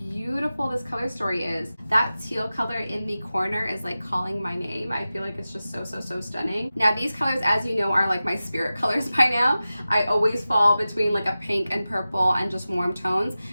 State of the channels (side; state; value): both; inverted; correlation -0.95